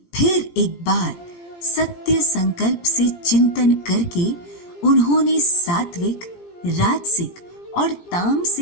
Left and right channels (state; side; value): late; right; 17 ms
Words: फिर एक बार सत्य संकल्प से चिंतन करके उन्होंने सात्विक, राजसिक और